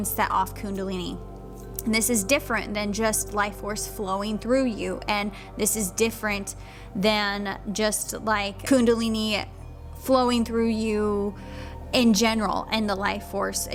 set off Kundalini. And this is different than just life force flowing through you, and this is different than just like Kundalini flowing through you in general and the life force,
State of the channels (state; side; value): identical; both; correlation 1.00